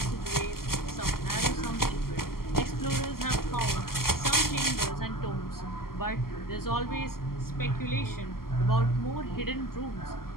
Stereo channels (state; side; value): late; right; 0.92 ms